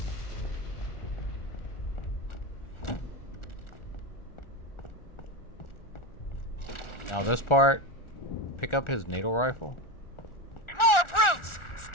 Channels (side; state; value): right; late; 1.4 ms